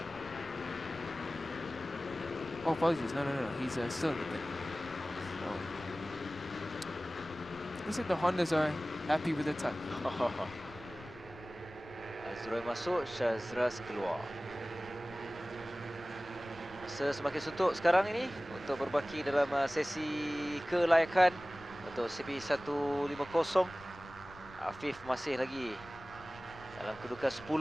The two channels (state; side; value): noise; left; rumble, 19 dB below the sound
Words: Oh, apologies. No. He's still in the pit. Looks like the Hondas are happy with the time. Azroy masuk, Shazras keluar. Masa semakin suntuk sekarang ini untuk berbaki dalam sesi kelayakan untuk CP150. Afif masih lagi dalam kedudukan